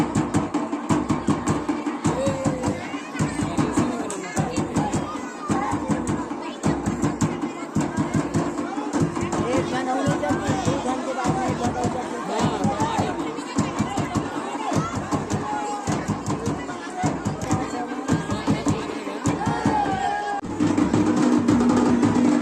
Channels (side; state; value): both; identical; correlation 1.00